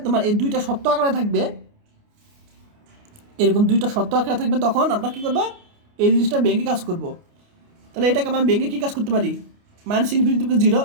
তোমার এই দুইটা সত্য আকারে থাকবে, এরকম দুইটা সত্য আকারে থাকবে, তখন আমরা কী করবো, এই জিনিসটা ব্যাংকে কাজ করব। তাহলে এটাকে আমরা ব্যাংকে কী কাজ করতে পারি, -∞ থেকে 0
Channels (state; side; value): late; left; 29 ms